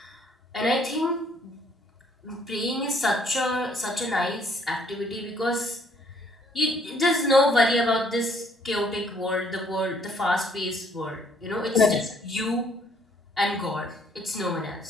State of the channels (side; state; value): both; normal; correlation 0.64